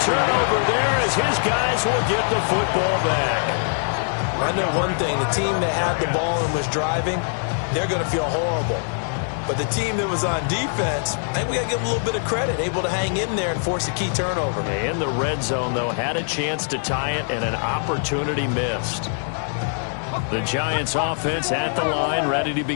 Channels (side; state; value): right; silent; digital silence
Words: turnover there as his guys will get the football back. I know one thing. The team that had the ball and was driving, they're going to feel horrible. But the team that was on defense, I think we got to give them a little bit of credit, able to hang in there and force a key turnover. In the red zone, though, had a chance to tie it and an opportunity missed. The Giants offense at the line, ready to